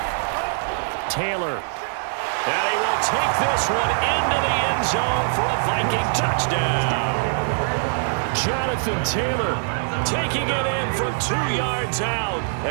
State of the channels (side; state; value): left; silent; digital silence